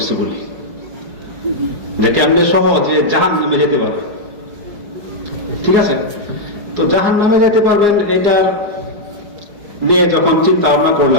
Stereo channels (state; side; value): late; left; 4.9 ms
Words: বলি, যে কেমনে সহজে জাহান্নামে যেতে পারবে। ঠিক আছে, তো জাহান্নামে যেতে পারবেন এটা নিয়ে যখন চিন্তা ভাবনা